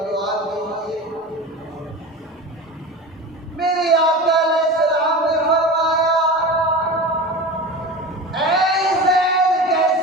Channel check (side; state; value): both; normal; correlation 0.30